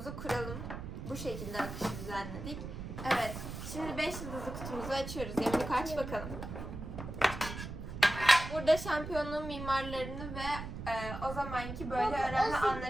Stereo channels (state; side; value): noise; right; rumble, 8 dB below the sound